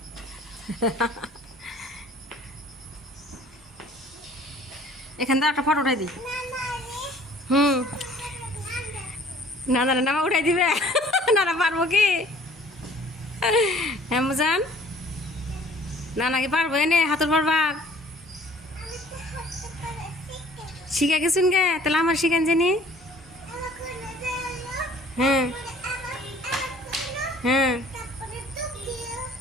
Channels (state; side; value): normal; both; correlation 0.54